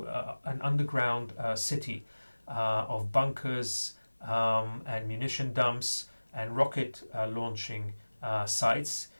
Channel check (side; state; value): both; inverted; correlation -1.00